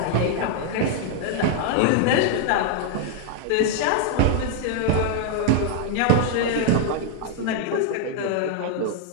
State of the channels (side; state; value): both; different; correlation 0.00